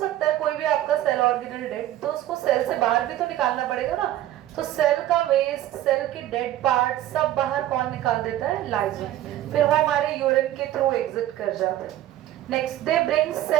है कोई भी आपका सेल ऑर्गेनल डेड, तो उसको सेल से बाहर भी तो निकालना पड़ेगा ना। तो सेल का वेस्ट, सेल के डेड पार्ट सब बाहर कौन निकाल देता है? लाइसोसोम। फिर वो हमारे यूरिन के थ्रू एग्जिट कर जाते हैं। Next, they bring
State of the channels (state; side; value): quieter; left; 13.5 dB